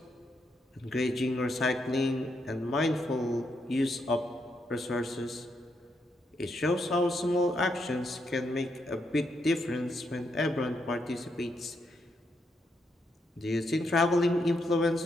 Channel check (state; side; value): normal; both; correlation 0.79